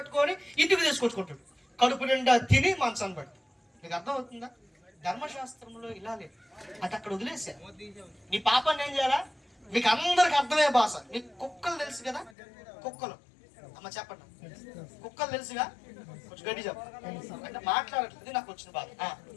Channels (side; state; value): right; drops out; at 12.4 s